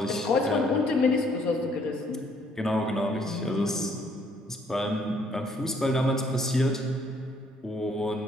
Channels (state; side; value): normal; both; correlation 0.65